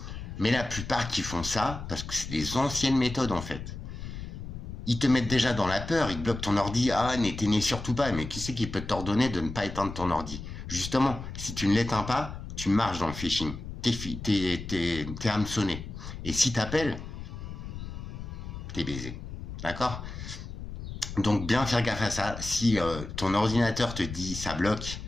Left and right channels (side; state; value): left; noise; rumble, 9 dB below the sound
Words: Mais la plupart qui font ça, parce que c'est des anciennes méthodes, en fait. Ils te mettent déjà dans la peur, ils bloquent ton ordi, n'éteignez surtout pas, mais qui c'est qui peut t'ordonner de ne pas éteindre ton ordi? Justement, si tu ne l'éteins pas, tu marches dans le phishing. T'es hameçonné. Et si t'appelles, t'es baisé. D'accord? Donc bien faire gaffe à ça. Si ton ordinateur te dit ça bloque